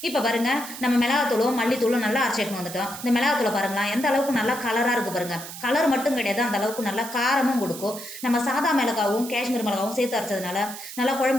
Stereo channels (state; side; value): noise; right; hiss, 11 dB below the sound